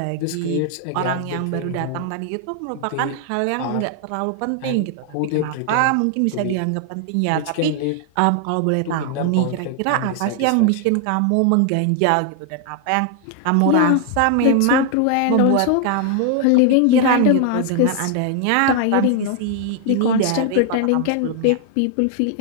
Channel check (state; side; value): different; both; correlation 0.00